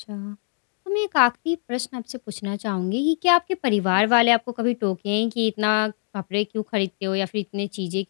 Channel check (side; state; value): right; silent; 57 dB below the other